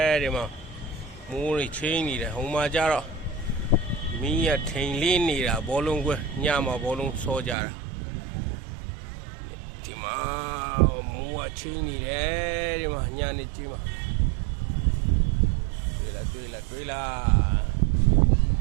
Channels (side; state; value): left; drops out; at 7.6 s